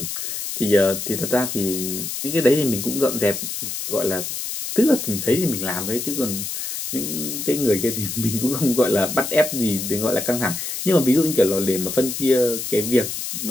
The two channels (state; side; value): noise; left; hiss, 5 dB below the sound